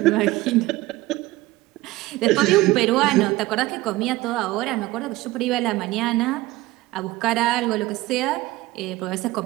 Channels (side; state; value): left; quieter; 18.5 dB